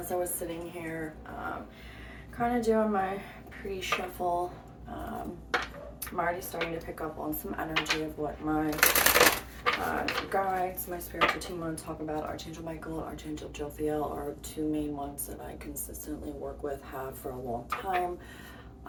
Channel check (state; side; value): identical; both; correlation 1.00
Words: I was sitting here, kind of doing my pre-shuffle, I'm already starting to pick up on some energy of what my guides, my spiritual team want to talk about. Archangel Michael, Archangel Jophiel are two main ones that I consistently work with, have for a long time.